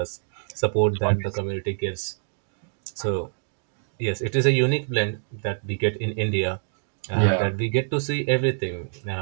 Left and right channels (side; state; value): left; silent; digital silence